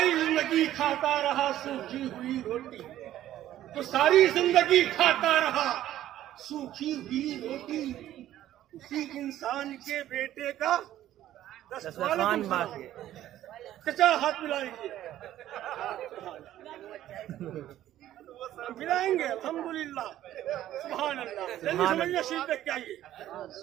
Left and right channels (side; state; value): left; quieter; 13.0 dB